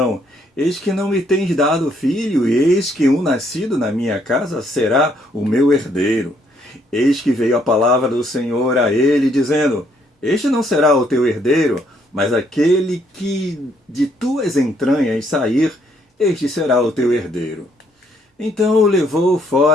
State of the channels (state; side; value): normal; both; correlation 0.69